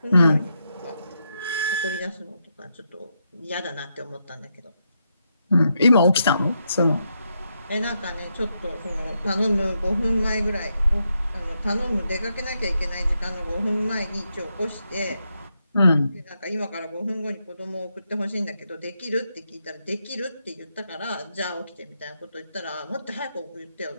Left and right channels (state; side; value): inverted; both; correlation -0.82